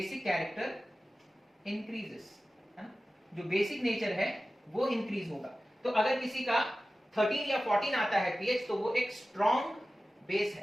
character increases, है ना, जो बेसिक नेचर है वो इंक्रीज होगा। तो अगर किसी का 13 या 14 आता है पीएच तो वो एक स्ट्रॉन्ग बेस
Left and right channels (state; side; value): normal; both; correlation 0.95